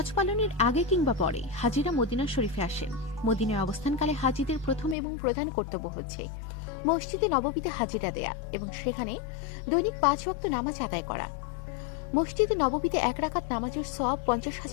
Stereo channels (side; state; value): right; drops out; at 5.0 s